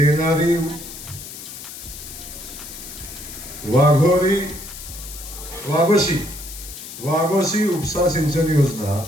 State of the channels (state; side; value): noise; left; hiss, 12 dB below the sound